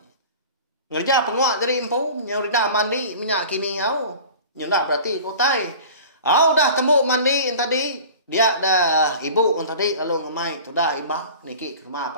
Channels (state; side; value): inverted; both; correlation -0.40